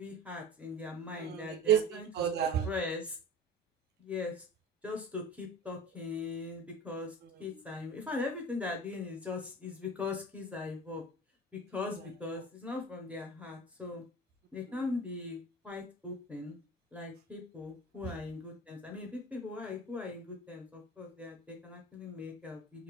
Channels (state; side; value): normal; both; correlation 0.36